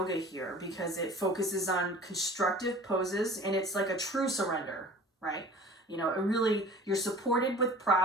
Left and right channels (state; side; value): normal; both; correlation 0.45